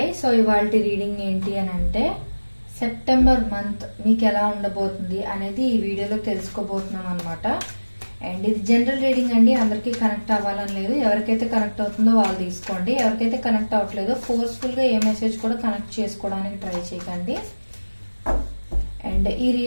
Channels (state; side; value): inverted; both; correlation -1.00